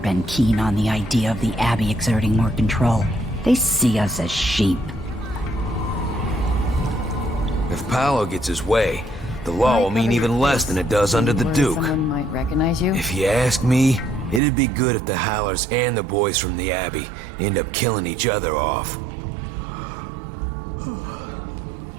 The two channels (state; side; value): drops out; left; at 14.4 s